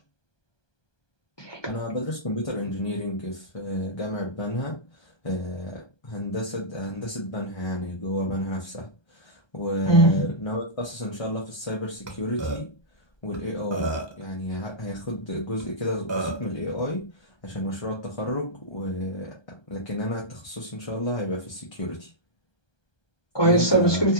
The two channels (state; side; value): late; right; 1.2 ms